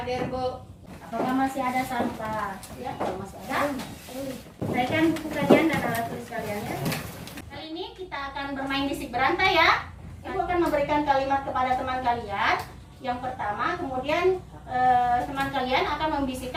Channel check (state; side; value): identical; both; correlation 1.00